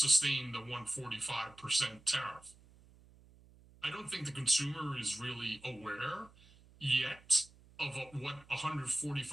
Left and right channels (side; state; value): right; noise; hum, 25 dB below the sound